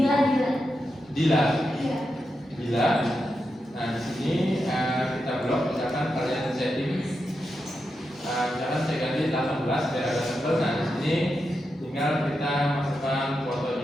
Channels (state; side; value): normal; both; correlation 0.87